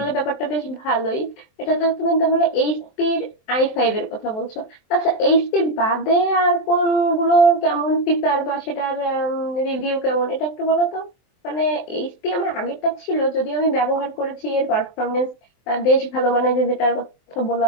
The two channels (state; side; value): late; right; 23 ms